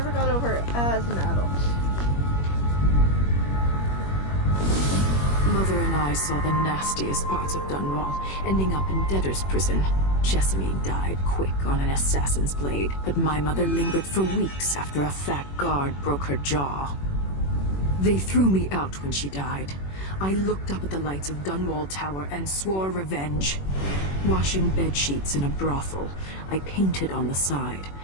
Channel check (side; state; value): right; late; 21 ms